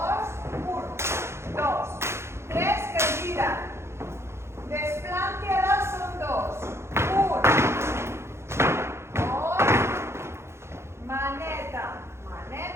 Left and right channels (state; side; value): late; left; 0.13 ms